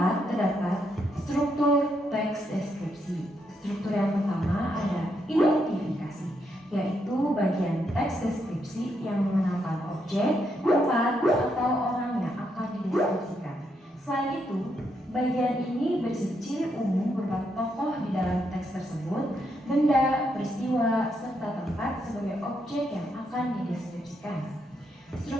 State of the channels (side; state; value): both; normal; correlation 0.78